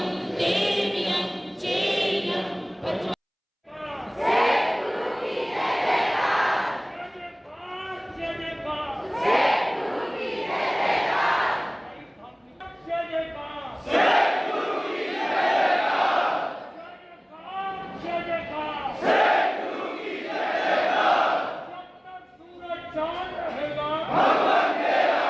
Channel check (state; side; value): identical; both; correlation 1.00